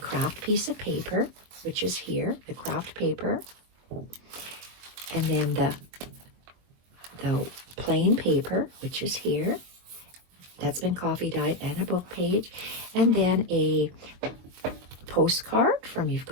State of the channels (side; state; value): left; late; 22 ms